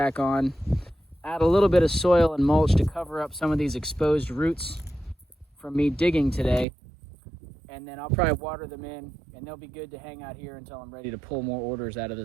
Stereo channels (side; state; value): left; drops out; at 6.7 s